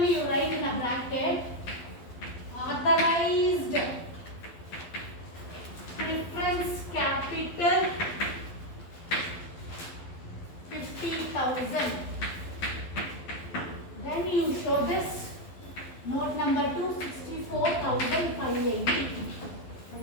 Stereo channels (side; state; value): right; late; 12 ms